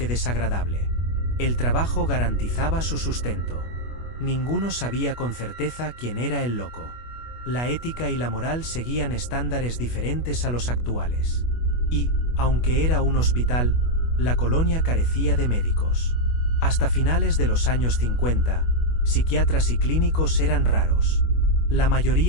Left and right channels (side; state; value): right; late; 25 ms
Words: desagradable. El trabajo garantizaba su sustento. Ninguno sabía con certeza quién era el loco. La ética y la moral seguían estándares diferentes a los actuales. Y, aunque era un hospital, la colonia carecía de médicos. Hasta finales de los años 50, psiquiatras y clínicos eran raros. La